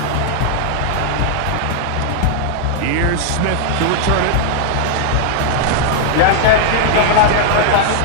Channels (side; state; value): both; different; correlation -0.01